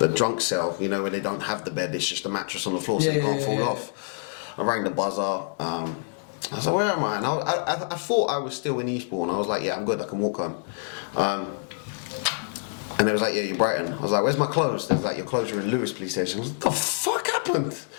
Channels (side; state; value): right; silent; digital silence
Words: cell, you know, where they don't have the bed, it's just a mattress on the floor, so you can't fall off. I rang the buzzer. I was like, "Where am I?" And I thought I was still in Eastbourne. I was like, "Yeah, I'm good, I can walk home." And they was like, "Yeah, you're Brighton." I was like, "Where's my clothes?" They was like, "Your clothes are in Lewis police station." I was like, "What the fuck happened?"